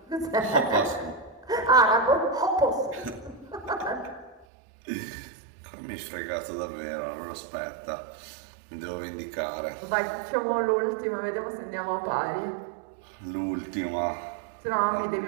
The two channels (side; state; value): left; drops out; at 4.5 s